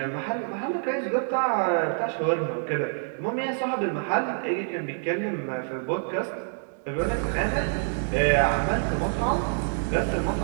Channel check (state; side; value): silent; left; digital silence